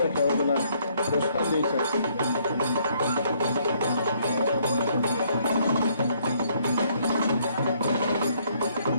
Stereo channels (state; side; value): inverted; both; correlation -0.67